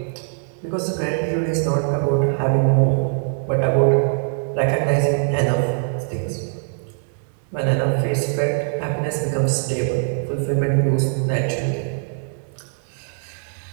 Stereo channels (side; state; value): left; silent; 62 dB below the other